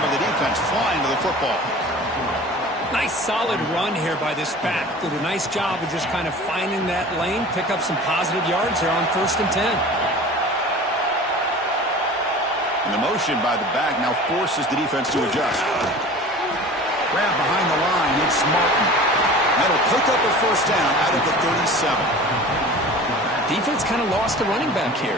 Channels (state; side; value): normal; both; correlation 0.40